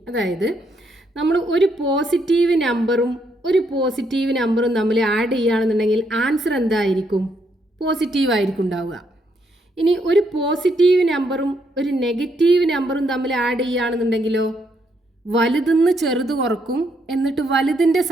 അതായത് നമ്മൾ ഒരു പോസിറ്റീവ് നമ്പറും തമ്മിൽ ആഡ് ചെയ്യുകയാണെന്നുണ്ടെങ്കിൽ ആൻസർ എന്തായിരിക്കും? പോസിറ്റീവ് ആയിരിക്കും ഉണ്ടാവുക. ഇനി ഒരു പോസിറ്റീവ് നമ്പറും ഒരു നെഗറ്റീവ് നമ്പറും തമ്മിൽ ആഡ് ചെയ്യുകയാണെന്നുണ്ടെങ്കിലോ വലുതെന്ന് ചെറുത് കുറക്കും, എന്നിട്ട് വലുതിൻ്റെ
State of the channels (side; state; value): both; normal; correlation 0.75